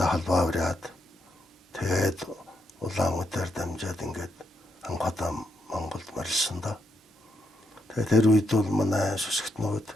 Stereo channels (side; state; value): both; normal; correlation 0.80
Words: холбоо бариад тэгээд Улаанбаатар дамжаад ингээд анхудаа Монголд морилсон да. Тэгээд тэр үед бол манай сүсгтнүүд